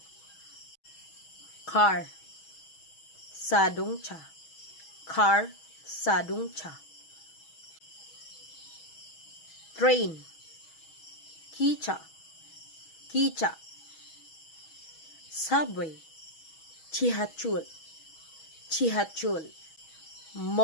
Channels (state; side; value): late; right; 6.2 ms